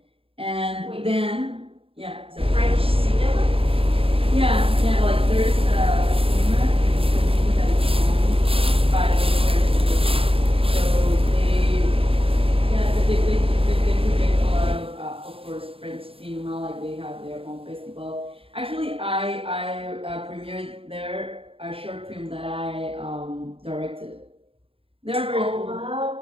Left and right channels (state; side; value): late; left; 0.27 ms